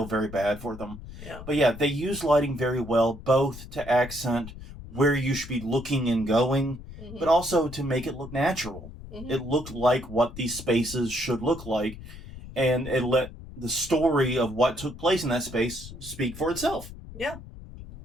very bad for them. Yeah. But yeah, they use lighting very well, both to accent where you should be looking and going, but also to make it look natural. Mm-hmm. It looked like what these spaces should look like, and it let the story of what took place in that space speak for itself. Yeah.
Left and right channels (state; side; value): noise; left; rumble, 14 dB below the sound